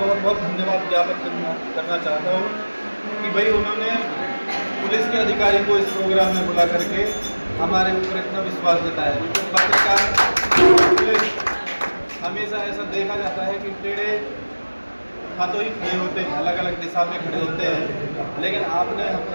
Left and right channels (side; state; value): both; inverted; correlation -1.00